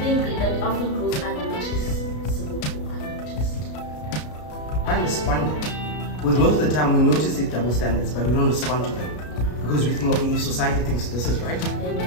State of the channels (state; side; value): late; right; 33 ms